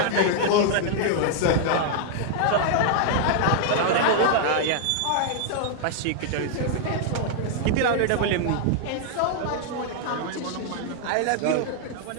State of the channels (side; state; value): both; different; correlation -0.01